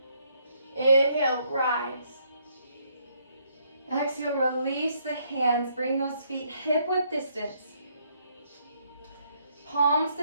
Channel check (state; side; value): inverted; both; correlation -0.71